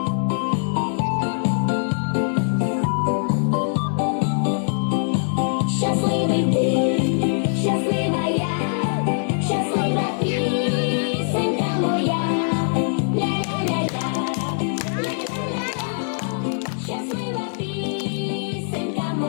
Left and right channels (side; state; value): right; silent; digital silence